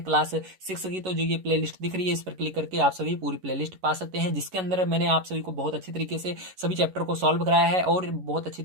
क्लास 6 की, तो जो ये प्लेलिस्ट दिख रही है इस पर क्लिक करके आप सभी पूरी प्लेलिस्ट पा सकते हैं, जिसके अंदर मैंने आप सभी को बहुत अच्छी तरीके से सभी चैप्टर को सॉल्व कराया है और बहुत अच्छी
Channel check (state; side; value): late; left; 11 ms